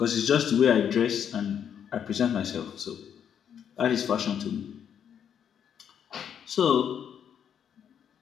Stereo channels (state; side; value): quieter; right; 8.5 dB